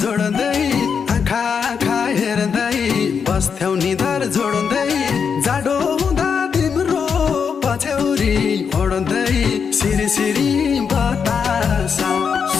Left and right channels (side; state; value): right; quieter; 6.4 dB